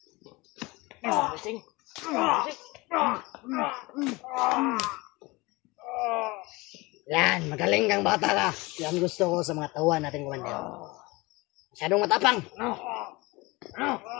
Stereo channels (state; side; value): quieter; right; 23.2 dB